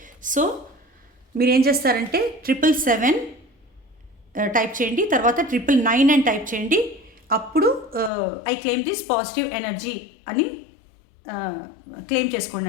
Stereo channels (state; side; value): drops out; right; at 8.1 s